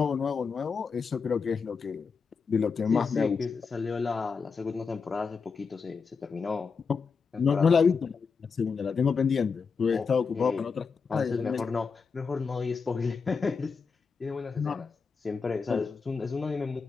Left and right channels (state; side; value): quieter; right; 5.3 dB